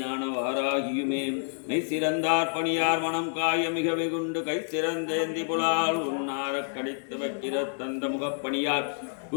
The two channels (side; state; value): right; silent; digital silence